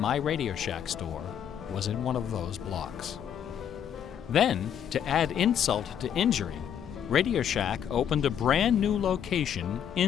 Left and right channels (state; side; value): quieter; right; 9.0 dB